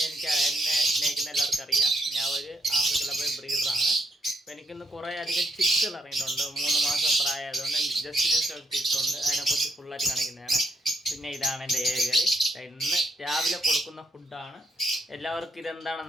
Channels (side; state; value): both; normal; correlation 0.76